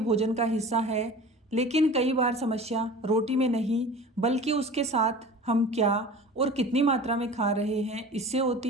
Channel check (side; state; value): both; normal; correlation 0.39